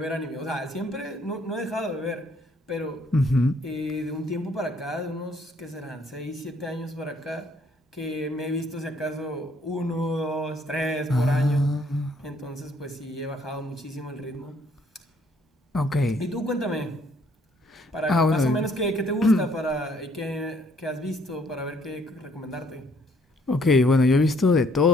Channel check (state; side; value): normal; both; correlation 0.65